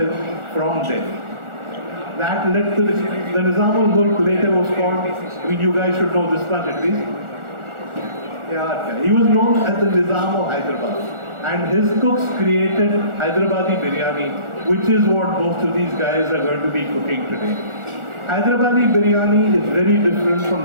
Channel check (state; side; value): late; left; 1.4 ms